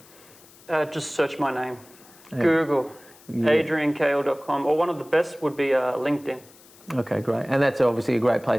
Just search my name. Google, adriankale.com, or one of the best would be LinkedIn. Okay, great. And that's obviously a great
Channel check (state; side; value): noise; left; hiss, 25 dB below the sound